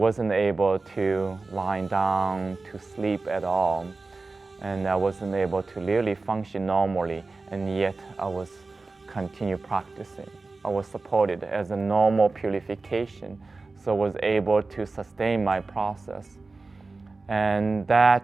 able to lie down, to sleep at all. And I wasn't able to really function normally, and yet I was continue practicing. I was supported as a normal purification, so I was able to sustain my process. And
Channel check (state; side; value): quieter; left; 3.7 dB